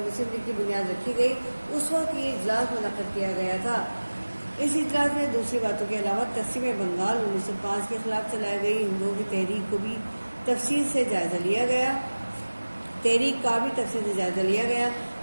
لیگ کی بنیاد رکھی گئی اس وقت یہ اجلاس منعقد کیا گیا تھا. اس اجلاس میں دوسری باتوں کے علاوہ تقسیم بنگال 1905 کے خلاف چلائی گئی ہندوؤں کی تحریک کو بھی تفصیل سے جائزہ لیا گیا، تحریک کا بھی تفصیل سے جائزہ لیا گیا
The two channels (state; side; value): inverted; both; correlation -1.00